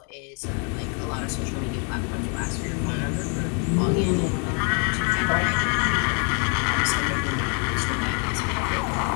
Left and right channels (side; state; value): right; quieter; 37.8 dB